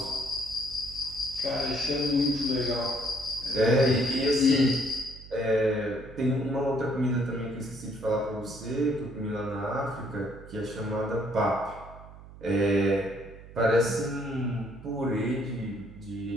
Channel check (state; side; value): noise; right; hum, 17 dB below the sound